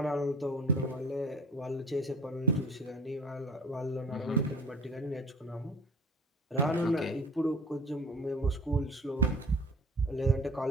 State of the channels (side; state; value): both; normal; correlation 0.46